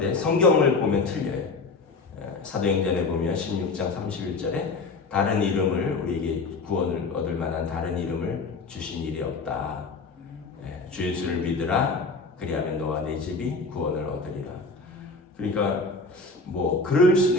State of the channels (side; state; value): right; quieter; 3.9 dB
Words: 성경을 보면 틀려요. 사도행전에 보면 16장 31절에 다른 이름을 우리에게 구원을 얻을 만한 다른 이름을 주신 일이 없다. 주 예수를 믿으라. 그리하면 너와 내 집이 구원을 얻으리라. 그러니까 그럴